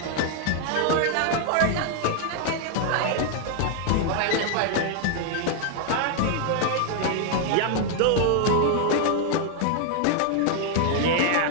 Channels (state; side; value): different; both; correlation 0.00